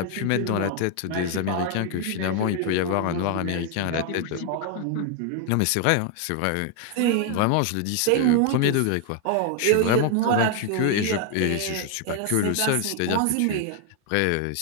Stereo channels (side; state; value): both; different; correlation 0.01